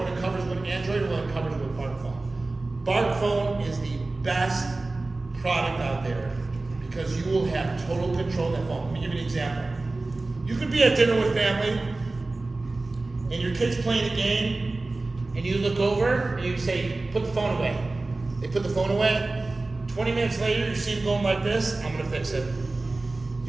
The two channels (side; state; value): left; quieter; 3.2 dB